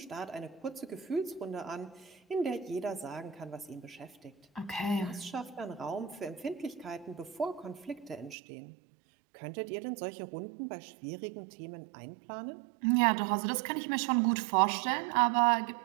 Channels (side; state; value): left; drops out; at 8.3 s